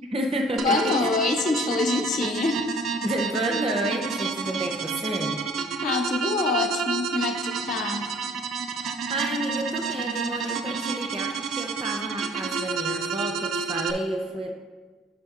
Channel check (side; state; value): both; normal; correlation 0.53